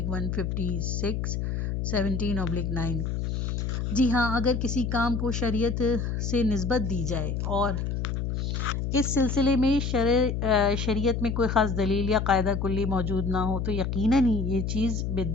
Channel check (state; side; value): noise; left; hum, 1 dB below the sound